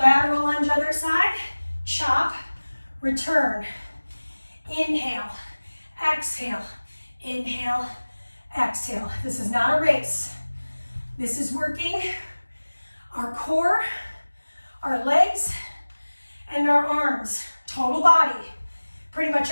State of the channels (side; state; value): both; inverted; correlation -1.00